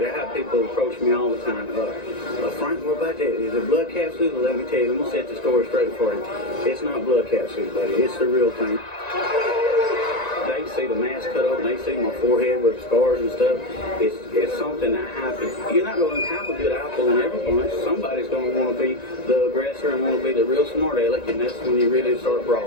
I have people approach me all the time. Frank, what about that? Is it blood capsules? Let me tell you, I'm going to set the story straight for you. It's not blood capsules, buddy. It's the real thing. They see the mask cut open, they see my forehead with scars and stuff. It's something that happens. You're not going to have a good apple in every bunch. Somebody's going to want to be the aggressor and want to be the real smart aleck, and that's when you really start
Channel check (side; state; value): right; late; 1.9 ms